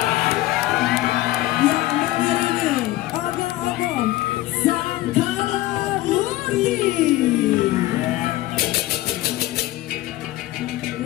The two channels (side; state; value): right; quieter; 16.7 dB